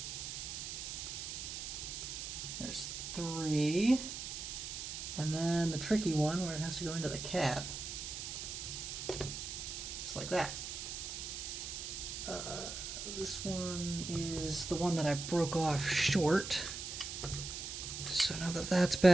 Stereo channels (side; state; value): right; noise; hiss, 6 dB below the sound